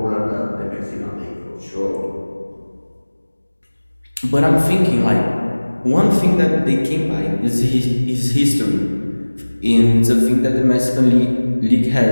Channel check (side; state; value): both; inverted; correlation -1.00